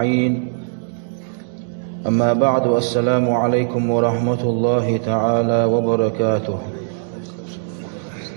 أما بعد، السلام عليكم ورحمة الله تعالى وبركاته.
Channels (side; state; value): left; silent; digital silence